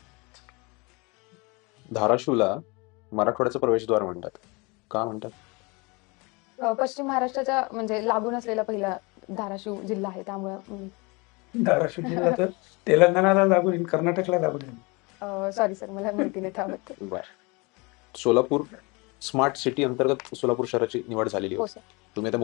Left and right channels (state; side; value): quieter; right; 27.6 dB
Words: धाराशिवला मराठवाड्याचं प्रवेशद्वार म्हणतात. का म्हणतात? पश्चिम महाराष्ट्राच्या म्हणजे लागून असलेला पहिला धाराशिव जिल्हा आहे त्यामुळं धाराशिव जिल्हा तर तेलंगणाला लागून आहे, कर्नाटकला लागून आहे. सॉरी सर मला माहिती नाही त्याबद्दल. बर. सोलापूर स्मार्ट सिटी अंतर्गत सोलापूर शहराची निवड झालेली हो होती. सर. तुम्ही आता